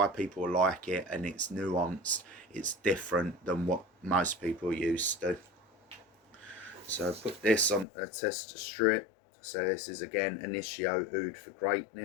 people like it, and it's nuanced. it's different than what most people are used to. So put this on a tester strip. So this is again Initio Oud for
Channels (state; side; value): drops out; right; at 7.9 s